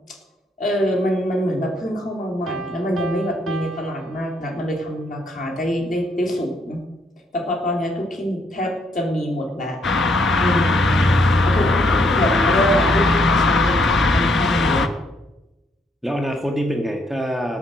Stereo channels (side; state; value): both; normal; correlation 0.72